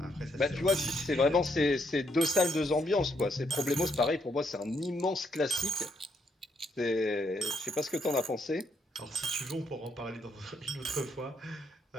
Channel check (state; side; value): normal; both; correlation 0.75